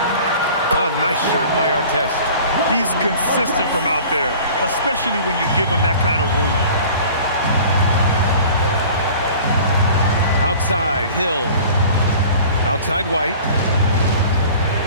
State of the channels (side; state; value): both; inverted; correlation -0.45